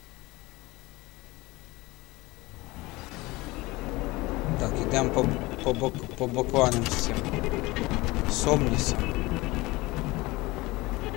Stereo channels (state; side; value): quieter; right; 21.3 dB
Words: Так, ідемо по бакланам з цим. З Омнісом.